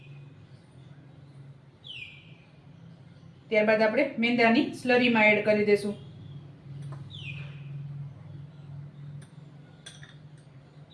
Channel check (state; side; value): identical; both; correlation 1.00